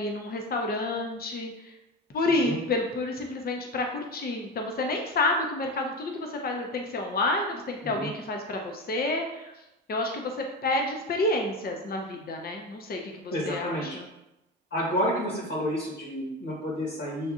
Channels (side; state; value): both; normal; correlation 0.23